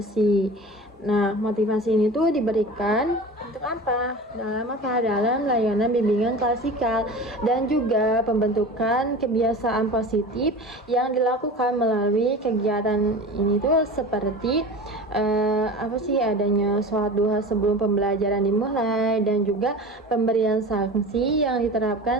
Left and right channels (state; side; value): normal; both; correlation 0.34